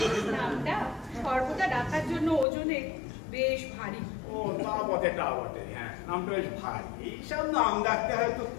নামটা সর্বদা ডাকার জন্য ওজনে বেশ ভারী। ও তা বটে, তা বটে। হ্যাঁ, নামটা বেশ ভারী। এইসব নাম ডাকতে হয়তো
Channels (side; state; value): right; drops out; at 2.5 s